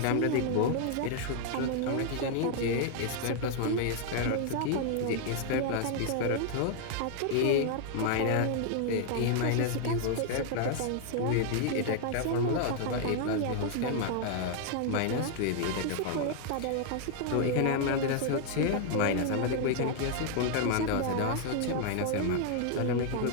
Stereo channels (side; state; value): both; different; correlation 0.00